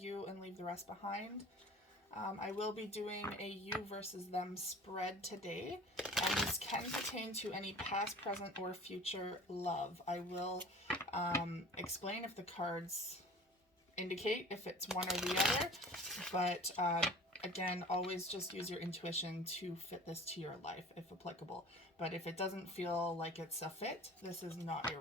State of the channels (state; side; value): normal; both; correlation 0.43